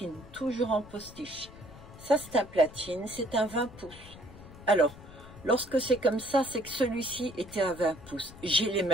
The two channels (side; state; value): left; noise; rumble, 18 dB below the sound